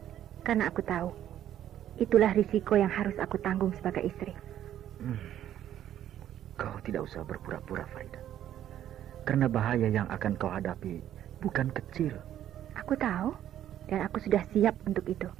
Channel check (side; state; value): left; quieter; 11.3 dB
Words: Karena aku tahu, itulah risiko yang harus aku tanggung sebagai istri. Kau tidak usah berpura-pura, Farida. Karena bahaya yang akan kau hadapi bukan kecil. Aku tahu, dan aku sudah siap untuk itu.